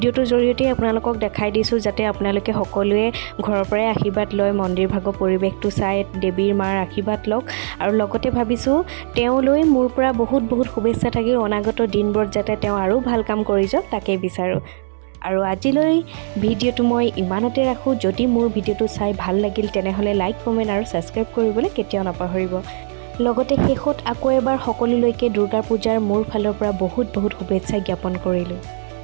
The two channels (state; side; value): silent; left; 66 dB below the other